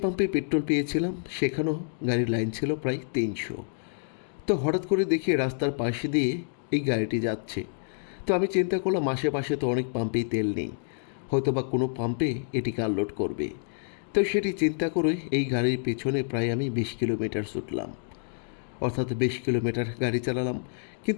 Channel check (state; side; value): silent; right; digital silence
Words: পাম্পে পেট্রোল পেয়েছিলাম, সেখানেও গাড়ির লাইন ছিল প্রায় 300। তো হঠাৎ করে দেখি রাস্তার পাশে দিয়ে এই গাড়িটি যাচ্ছে। তো আমি চিন্তা করলাম আশেপাশে তো অনেক পাম্পেই তেল নেই, হয়তো বা কোনো পাম্পে এটিকে আনলোড করবে। তো সেটি চিন্তা করে এই গাড়ির পেছনে প্রায় আমি 20 কিলোমিটার ছুটলাম, অর্থাৎ 20 কিলোমিটার গাড়ি চালালাম।